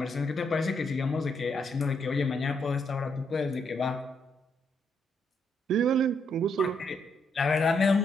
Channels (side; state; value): both; normal; correlation 0.76